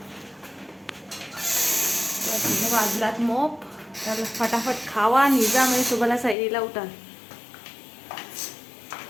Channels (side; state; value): right; drops out; at 6.4 s